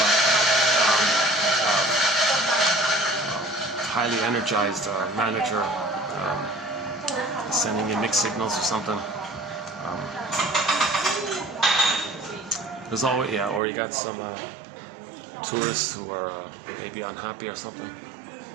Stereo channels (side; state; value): left; drops out; at 13.6 s